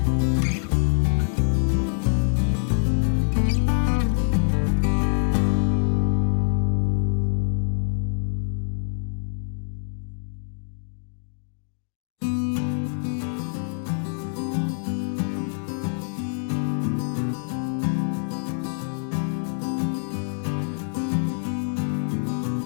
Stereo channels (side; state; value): right; silent; digital silence